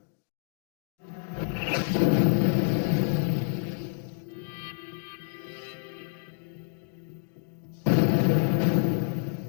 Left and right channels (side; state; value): right; silent; digital silence